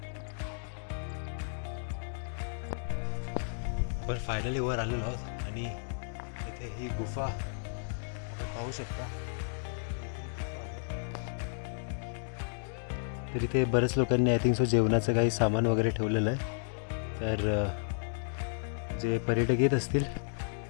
पण फायनली वर आलेलो आहोत आणि इथे ही गुफा आपण पाहू शकता. तर इथे बरेच लोकांनी आय थिंक सो जेवणाचं काही सामान वगैरे ठेवलेलं आहे. तर जे पर्यटक येत असतील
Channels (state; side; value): silent; right; digital silence